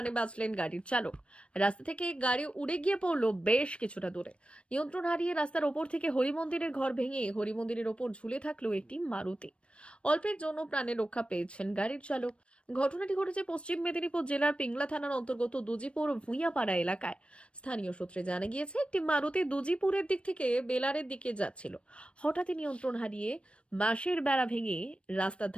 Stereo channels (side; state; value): right; late; 0.060 ms